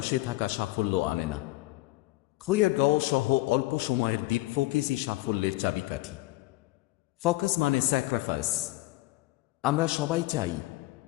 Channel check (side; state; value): right; quieter; 19.1 dB